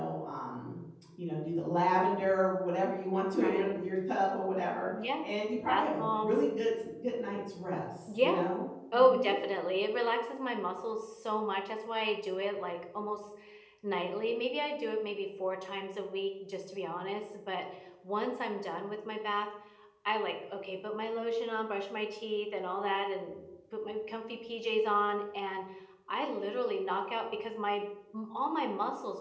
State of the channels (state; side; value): identical; both; correlation 1.00